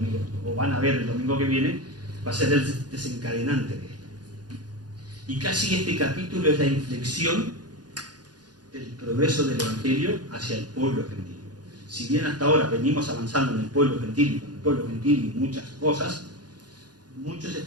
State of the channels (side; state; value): left; late; 0.69 ms